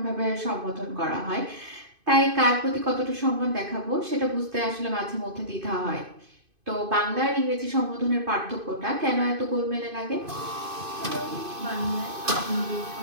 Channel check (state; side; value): late; left; 2.5 ms